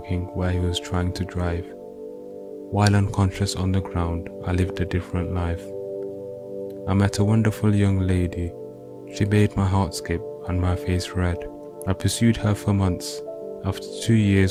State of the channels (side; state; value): both; identical; correlation 1.00